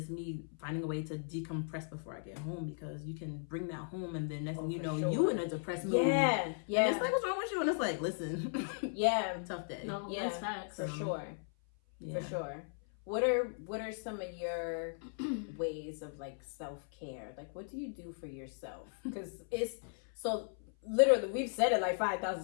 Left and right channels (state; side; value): silent; right; 53 dB below the other